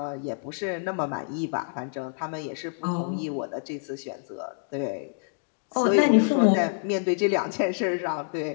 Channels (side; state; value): right; silent; digital silence